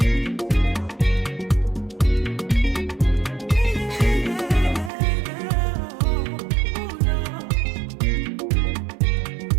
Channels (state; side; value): drops out; left; at 4.9 s